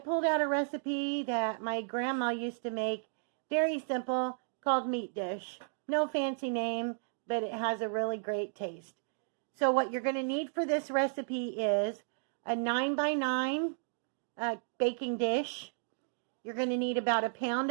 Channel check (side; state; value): left; silent; digital silence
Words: out a recipe that my grandma used to make, very simple, called meat dish. No fancy name, but it has a really great taste. So what you're going to need for this recipe is a 9x9 baking dish. You're going to need about a